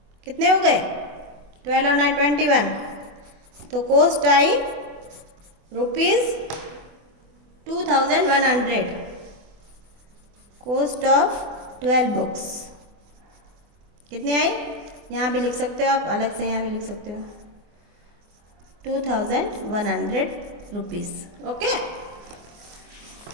कितने हो गए, 12 और 9 21। तो cost I ₹2100। Cost of 12 books कितने आई, यहाँ भी लिख सकते हो आप, अलग से यहाँ भी लिख सकते हो, 2100 रुपीज़। ओके,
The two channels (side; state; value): left; late; 24 ms